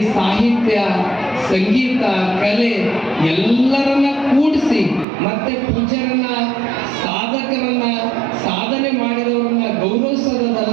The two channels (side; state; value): left; drops out; at 5.1 s